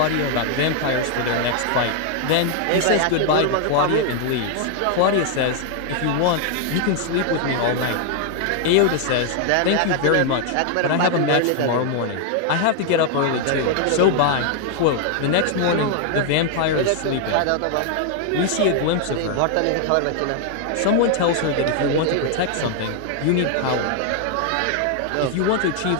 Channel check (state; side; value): different; both; correlation 0.00